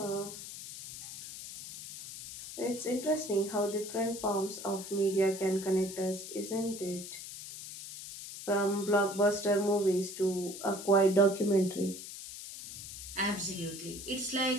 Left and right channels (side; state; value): left; noise; hiss, 11 dB below the sound